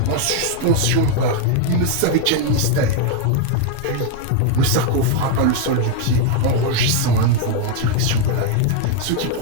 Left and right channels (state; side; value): different; both; correlation 0.01